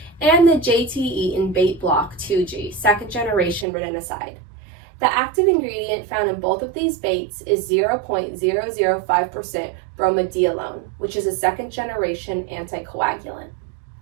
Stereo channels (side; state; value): left; drops out; at 3.7 s